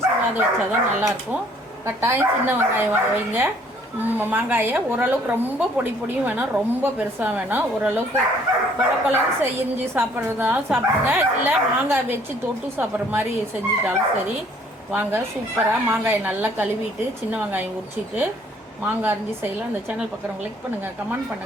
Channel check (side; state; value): both; normal; correlation 0.60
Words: சீவாத வச்சா தான் நல்லாயிருக்கும். கட்டாயம் சின்ன வெங்காயம் வைங்க. மாங்காயை ஓரளவுக்கு ரொம்ப பொடியும் வேணாம், ரொம்ப பெருசாக வேணாம். ஓரளவுக்கு கொலன்னு செஞ்சு சாப்பிட்றதாலும் சாப்பிடுங்க, இல்லை மாங்காய் வச்சு தொட்டு சாப்பிட்ற மாதிரி செஞ்சுட்டாலும் சரி. வாங்க, சூப்பராக மாங்காயை நல்லா கழுவிட்டு சின்ன வெங்காயம் உரிச்சிட்டு மாங்காய் அரிஞ்சு செய்யலாம். அந்த சேனல் பார்க்குறவங்க லைக் பண்ணுங்கள், கமெண்ட்